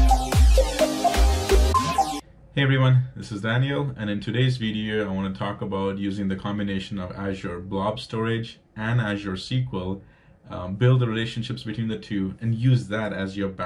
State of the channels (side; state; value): both; identical; correlation 1.00